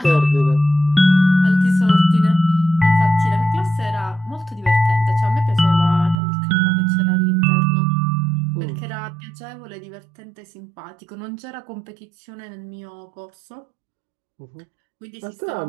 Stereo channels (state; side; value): drops out; left; at 6.2 s